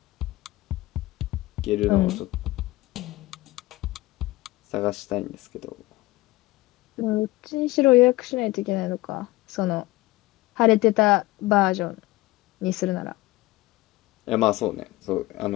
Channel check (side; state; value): right; quieter; 19.1 dB